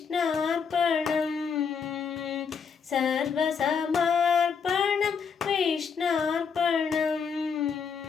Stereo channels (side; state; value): right; quieter; 6.2 dB